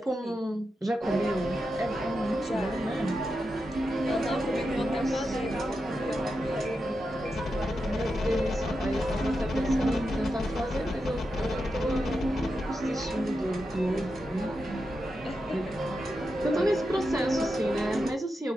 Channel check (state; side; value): normal; both; correlation 0.88